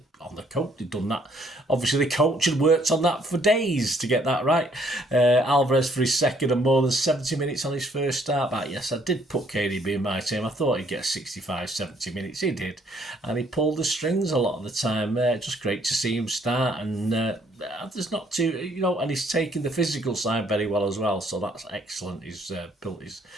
on the coach, they'd done that. Obviously, the coach had worked on that for days to get that right. Alvarez for his second and more than 70 minutes on his first start back. Yes, I did put KDB in my team. I thought he'd get 65, 70 minutes. He did. And he pulled the strings a lot of the time. Just great to see him start. And there's not too, and he's taken the physical side very well as well. So that's excellent. He's built his...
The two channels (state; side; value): normal; both; correlation 0.65